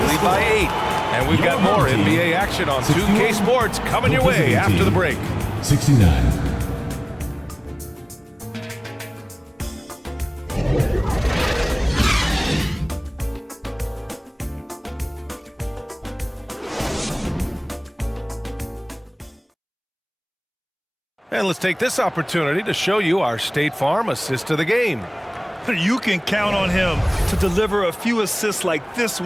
lead by 8. And we've got more NBA action on 2K Sports coming your way after the break. 69. And let's take this opportunity to show you our State Farm assist of the game. You can count on him to deliver a few assists like this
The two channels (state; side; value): identical; both; correlation 1.00